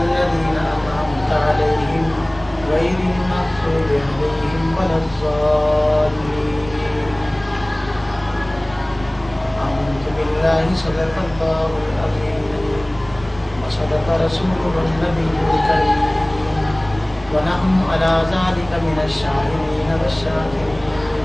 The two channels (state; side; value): noise; right; rumble, 18 dB below the sound